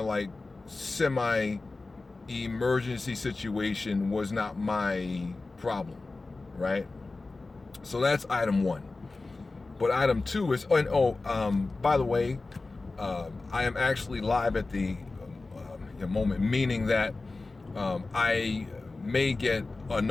like semi-emergency situation was not my problem, right? So that's item one. But item two is, by the way, I am actually live at the moment, meaning that I may get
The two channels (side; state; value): right; quieter; 3.5 dB